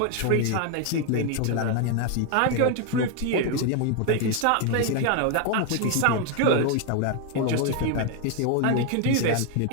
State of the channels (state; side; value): different; both; correlation 0.00